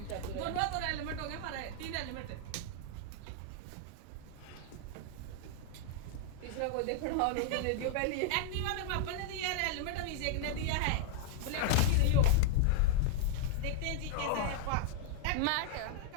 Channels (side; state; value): both; different; correlation -0.01